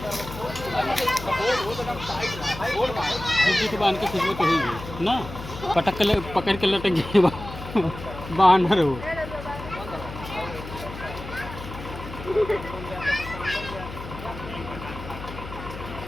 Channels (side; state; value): left; noise; hum, 11 dB below the sound